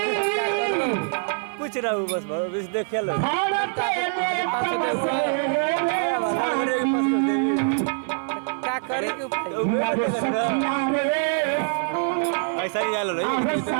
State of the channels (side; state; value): left; silent; digital silence